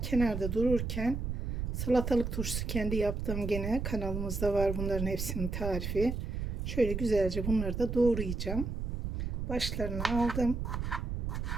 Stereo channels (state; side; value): noise; right; rumble, 3 dB below the sound